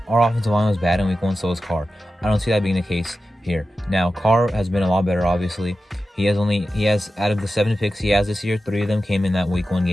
offensive line was bad in Week 1, so was Carr. I don't see that being the case here. Now, Carr has been a lot better, obviously. He has out of the 7 picks he has this year, 3 of them came in that Week 1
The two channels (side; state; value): both; normal; correlation 0.92